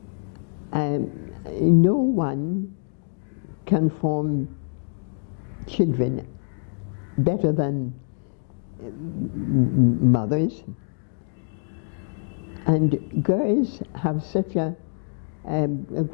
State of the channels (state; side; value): silent; right; 62 dB below the other